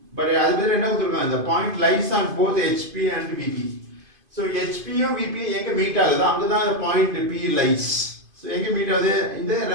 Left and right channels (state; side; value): late; left; 2.5 ms